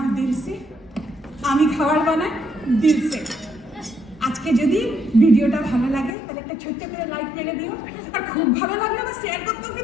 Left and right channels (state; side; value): drops out; right; at 6.2 s